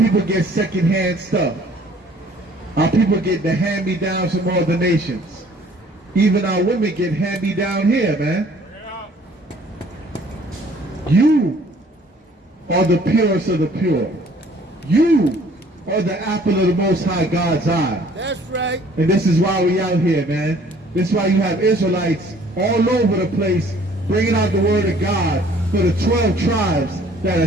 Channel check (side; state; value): both; normal; correlation 0.56